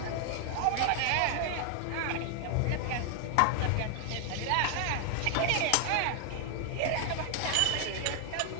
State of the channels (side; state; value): both; different; correlation 0.00